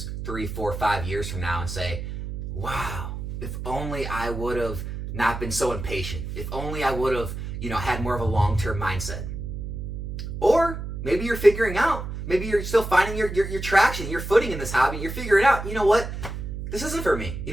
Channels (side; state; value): right; noise; hum, 6 dB below the sound